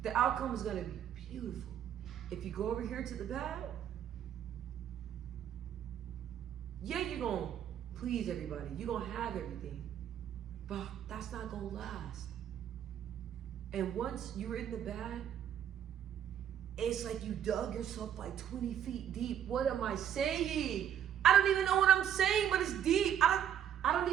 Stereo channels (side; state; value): left; quieter; 9.8 dB